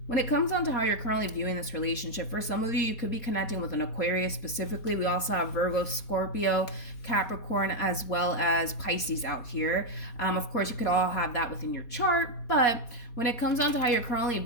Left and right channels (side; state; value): right; late; 4.2 ms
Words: When it comes down to how you're currently viewing this relationship, for some of you, you could be connecting with an Aquarius specifically. We also have Virgo, Scorpio, Capricorn, as well as Pisces out here. Of course, you could all have that within your chart, but when it comes down to how you're currently